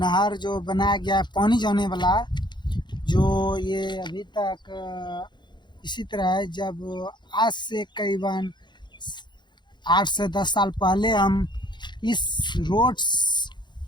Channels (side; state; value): right; late; 0.22 ms